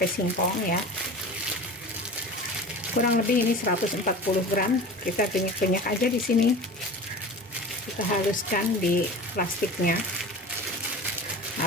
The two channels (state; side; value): normal; both; correlation 0.35